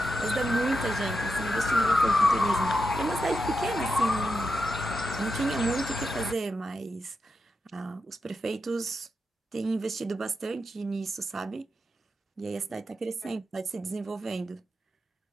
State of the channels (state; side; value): normal; both; correlation 0.87